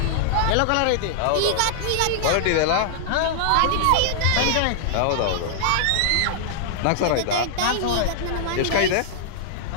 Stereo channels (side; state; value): both; different; correlation -0.01